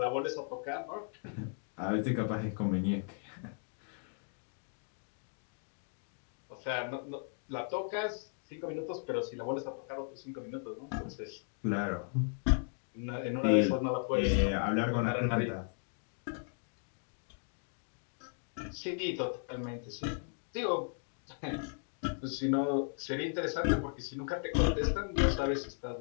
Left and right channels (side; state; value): right; silent; 54 dB below the other